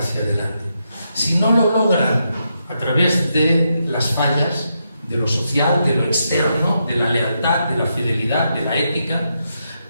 adelante. Si no lo logran a través de las fallas, de lo social, de lo externo, de la lealtad, de la fidelidad, de la ética,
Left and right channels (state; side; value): inverted; both; correlation -0.82